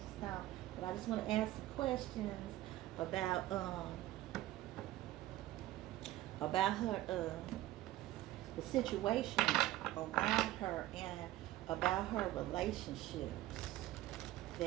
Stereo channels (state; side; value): quieter; left; 15.5 dB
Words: Stone. But I just want to ask some questions about her, the situation around her, and about her relationships